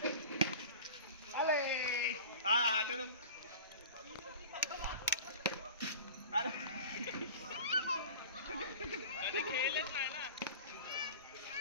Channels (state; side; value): inverted; both; correlation -0.38